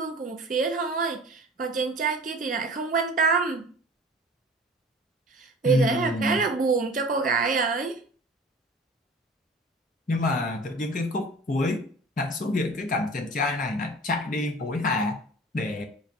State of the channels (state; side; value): normal; both; correlation 0.43